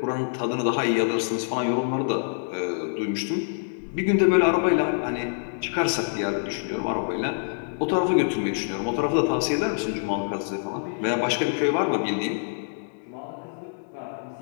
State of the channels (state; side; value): silent; right; digital silence